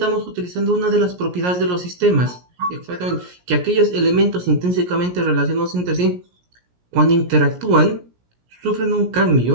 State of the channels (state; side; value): late; left; 17 ms